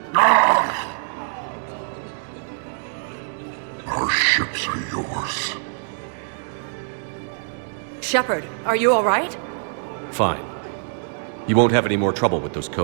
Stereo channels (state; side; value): silent; left; digital silence